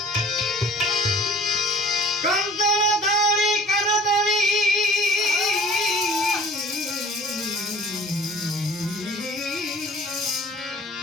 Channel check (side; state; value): both; normal; correlation 0.48